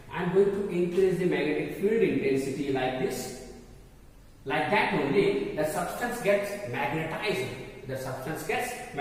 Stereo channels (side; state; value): both; identical; correlation 1.00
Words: I am going to increase the magnetic field intensity like this. Like that only, the substance gets magnetized.